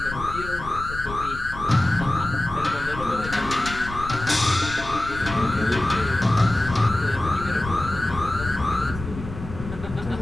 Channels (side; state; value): left; noise; rumble, 10 dB below the sound